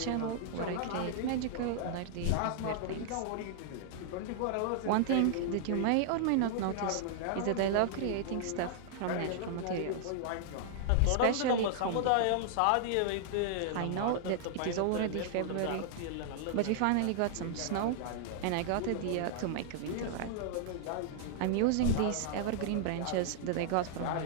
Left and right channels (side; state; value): both; different; correlation -0.01